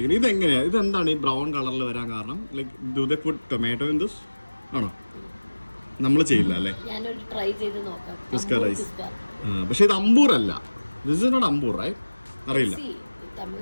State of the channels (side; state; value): both; inverted; correlation -1.00